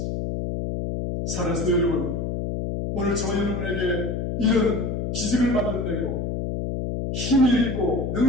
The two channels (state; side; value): noise; left; hum, 2 dB below the sound